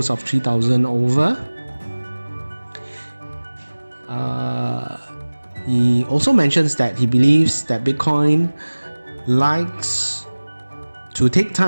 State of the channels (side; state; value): both; inverted; correlation -1.00